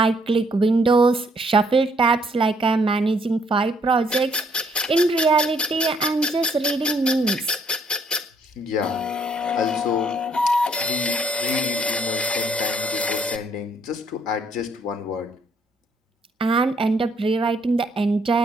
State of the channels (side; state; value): both; normal; correlation 0.68